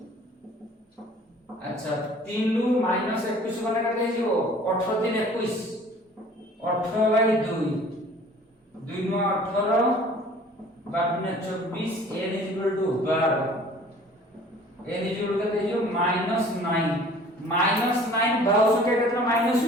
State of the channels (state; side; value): normal; both; correlation 0.50